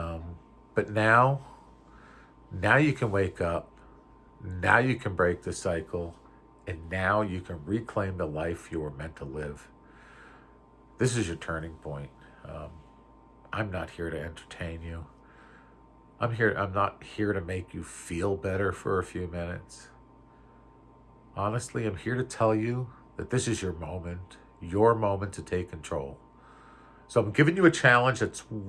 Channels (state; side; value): identical; both; correlation 1.00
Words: now you can wake up. Now you can break the cycle. And now you can reclaim the life you were meant to live. This is your turning point. I'm not here to entertain you. I'm not here to make you feel better for a few minutes. Honestly, I'm here to tell you that this is your moment to take control. So I'm giving you a challenge that's